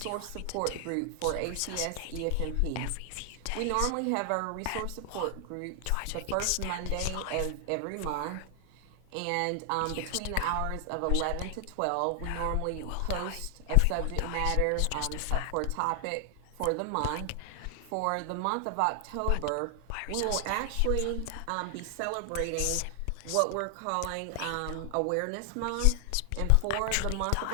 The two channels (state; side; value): different; both; correlation 0.00